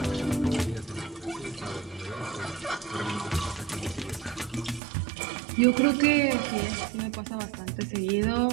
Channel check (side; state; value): left; drops out; at 4.8 s